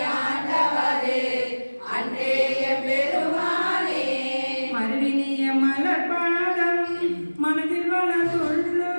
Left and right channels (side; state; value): both; inverted; correlation -1.00